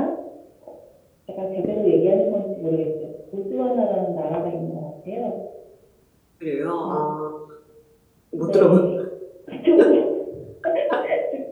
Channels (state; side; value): identical; both; correlation 1.00